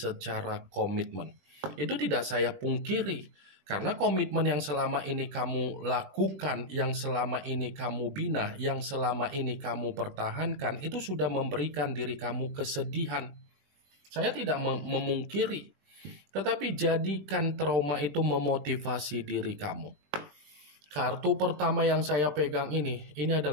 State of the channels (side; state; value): left; late; 21 ms